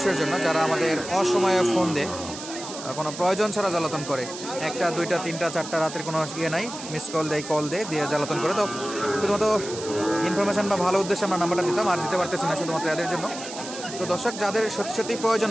জন্য যারা আমাদের অসময়ে ফোন দেয়, কোনো প্রয়োজন ছাড়া জ্বালাতন করে, 1টা 2টা 3টা 4টা রাতের কোনো ইয়ে নাই, মিস কল দিয়ে জ্বালাতন করে। তো শুধুমাত্র ইনফরমেশান বা ভালো উদ্দেশ্যে আমরা নাম্বারটা দিতাম, আর দিতে পারতেছি না শুধুমাত্র এদের জন্য। তো দর্শক, যাদের সত্যি প্রয়োজন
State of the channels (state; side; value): noise; right; hiss, 11 dB below the sound